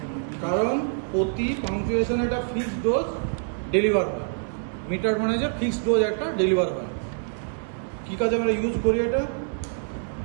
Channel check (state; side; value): silent; left; digital silence